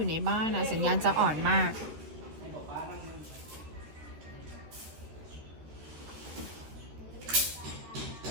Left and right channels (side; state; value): left; late; 13 ms